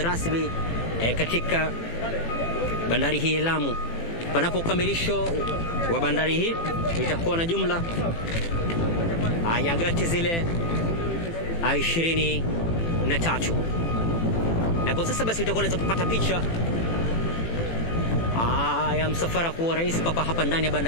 rasmi katika bandari hii ya Lamu. Panapo ukamilisho wa bandari hii itakuwa na jumla ya gati zile 23. Na kwa sasa basi utakuwa unaweza kupata picha ya msafara wa rais papa hapa ndani ya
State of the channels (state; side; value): late; right; 18 ms